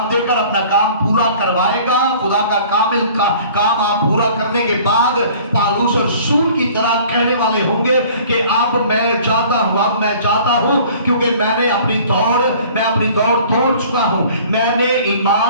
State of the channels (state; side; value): inverted; both; correlation -0.49